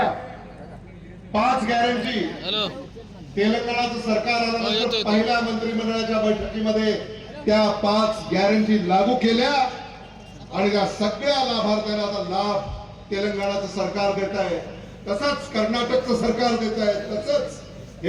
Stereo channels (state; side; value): identical; both; correlation 1.00